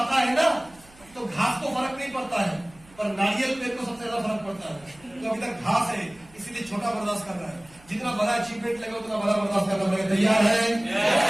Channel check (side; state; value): right; noise; hum, 26 dB below the sound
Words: है ना तो घास को फर्क नहीं पड़ता है, पर नारियल पेड़ को सबसे ज्यादा फर्क पड़ता है। तो अभी तक घास है इसीलिए छोटा बर्दाश्त कर रहा है, जितना बड़ा अचीवमेंट लगे उतना बड़ा बर्दाश्त करना पड़ेगा। तैयार है?